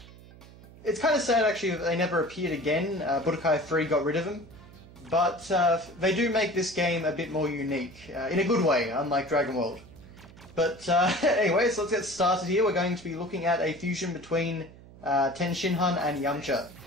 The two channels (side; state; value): right; noise; hum, 20 dB below the sound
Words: It's kind of sad actually that they never appeared again. Budokai 3 got rid of them. But they do make this game a bit more unique, in a good way, unlike Dragon World. But anyway, so let's get started here. We're going to be looking at a fusion between Ten Shinhan and Yamcha.